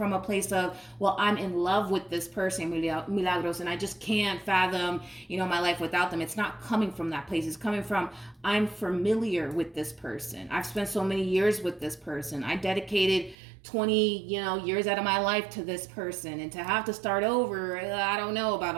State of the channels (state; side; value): drops out; left; at 13.4 s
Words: a place of, well, I'm in love with this person, Milagros, and I just can't fathom, my life without them. It's not coming from that place. It's coming from, I'm familiar with this person. I've spent so many years with this person. I dedicated 20 years out of my life to this person, and to have to start over, I don't know about